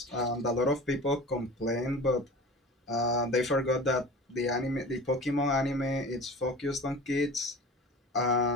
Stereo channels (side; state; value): both; normal; correlation 0.37